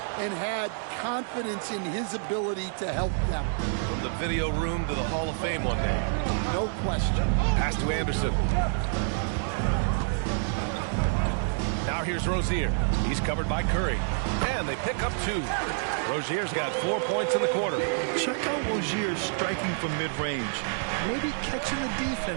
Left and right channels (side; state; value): left; silent; 59 dB below the other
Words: and had confidence in his ability to help them. From the video room to the Hall of Fame one day. No question. Pass to Anderson. Now here's Rozier. He's covered by Curry. And they pick up 2. Rozier's got 4 points in the quarter. Check out Rozier striking from mid-range. Maybe catching the